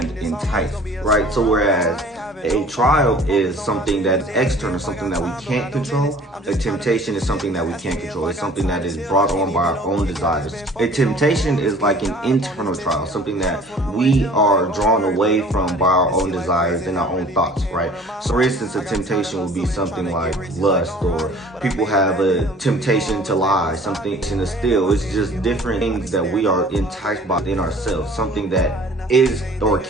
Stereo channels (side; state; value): both; normal; correlation 0.49